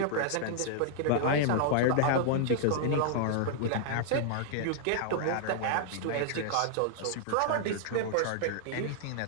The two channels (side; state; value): both; different; correlation -0.01